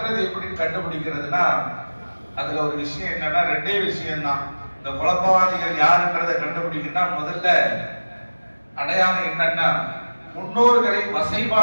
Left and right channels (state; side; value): inverted; both; correlation -1.00